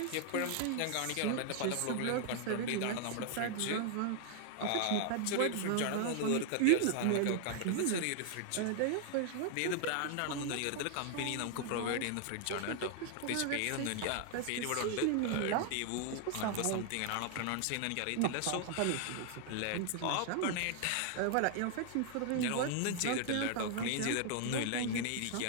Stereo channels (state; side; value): different; both; correlation 0.00